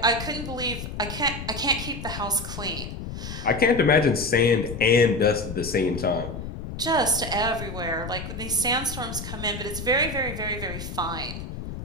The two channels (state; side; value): noise; left; rumble, 8 dB below the sound